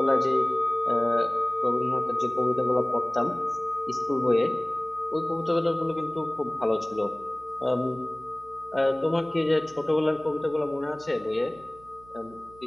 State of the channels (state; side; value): noise; right; hum, 24 dB below the sound